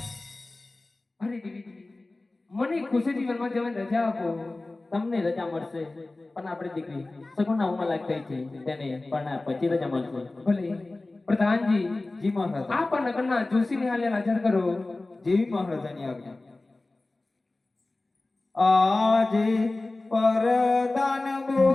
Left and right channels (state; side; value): quieter; right; 3.0 dB